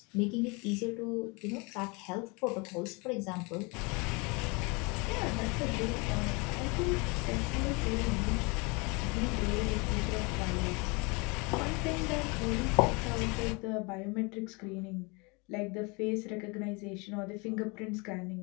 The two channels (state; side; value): quieter; right; 29.0 dB